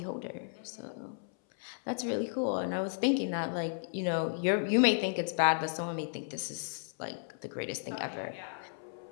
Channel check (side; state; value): right; silent; 55 dB below the other